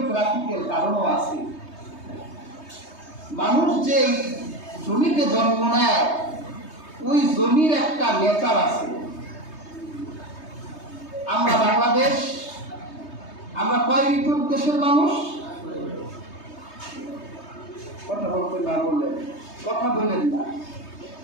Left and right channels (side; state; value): right; late; 3.2 ms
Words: কারণও আছে। মানুষ যে জমিতে জন্ম নেয় ওই জমির একটা নেচার আছে। আমরা বাংলাদেশ, আমরা কয় ঋতুর দেশের মানুষ? কথা বলতে না বললেন, কথা বললেন না।